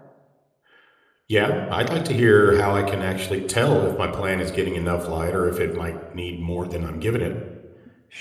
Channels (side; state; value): both; identical; correlation 1.00